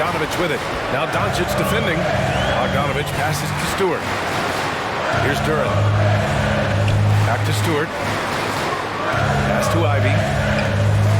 with it. Now Doncic defending. Bogdanovich passes to Stewart. Here's Duren. Back to Stewart. Pass to Ivy.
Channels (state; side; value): identical; both; correlation 1.00